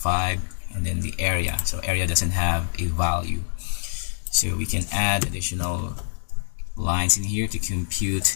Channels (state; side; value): silent; right; digital silence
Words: and then the area. So area doesn't have a value, so we can add additional lines in here to